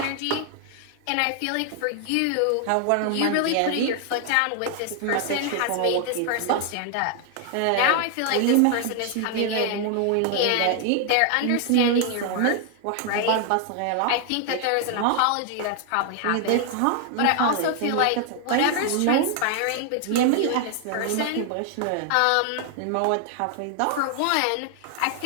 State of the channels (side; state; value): both; different; correlation 0.00